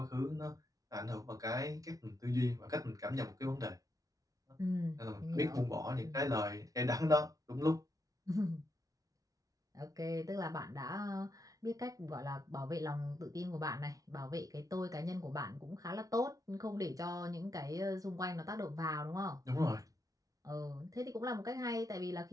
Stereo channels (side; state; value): left; late; 0.17 ms